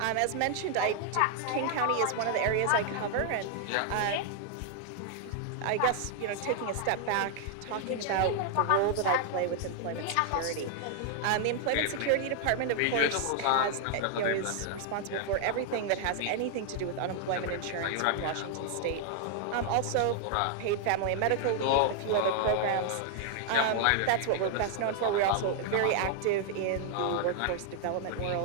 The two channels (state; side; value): different; both; correlation 0.00